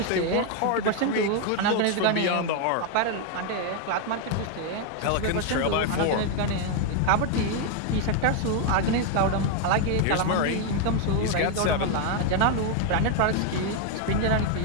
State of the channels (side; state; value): both; different; correlation 0.01